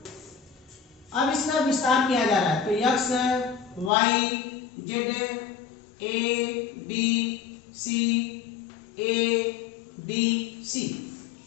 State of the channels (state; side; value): drops out; right; at 3.9 s